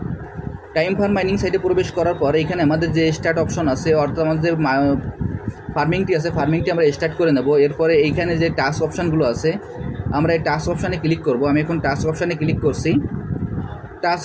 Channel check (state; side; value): identical; both; correlation 1.00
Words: টাইম ফার্ম মাইনিং সাইটে প্রবেশ করার পর এখানে আমাদের যে স্টার্ট অপশন আছে, অর্থাৎ আমাদের ফার্মিংটি আছে, ফার্মিংটি আমরা স্টার্ট করে নেব। এরপরে এইখানে যে টাস্ক অপশানগুলো আছে, আমরা এই টাস্ক অপশানে ক্লিক করব। আমি এখন টাস্ক অপশানে ক্লিক করছি।